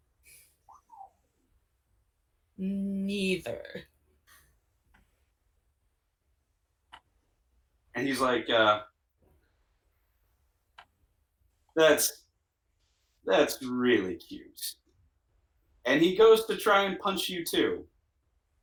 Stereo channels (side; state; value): both; identical; correlation 1.00